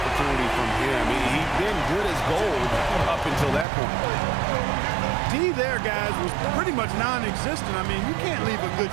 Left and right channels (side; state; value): left; drops out; at 3.7 s